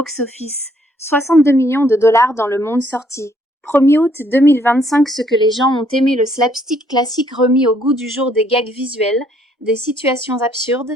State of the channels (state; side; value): normal; both; correlation 0.67